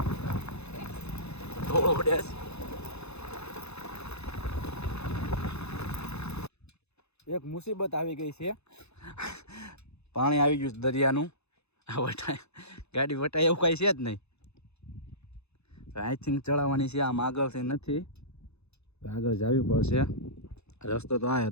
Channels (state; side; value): late; right; 0.80 ms